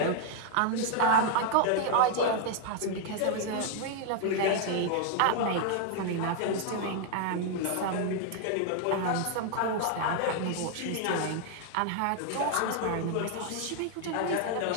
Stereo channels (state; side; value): different; both; correlation 0.00